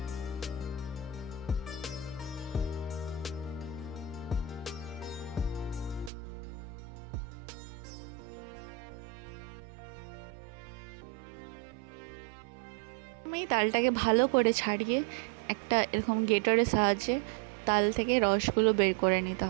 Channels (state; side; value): drops out; left; at 6.1 s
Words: আমি তালটাকে ভালো করে ছাড়িয়ে একটা এরকম গ্রেটারের সাহায্যে তাল থেকে রসগুলো বের করে নিতে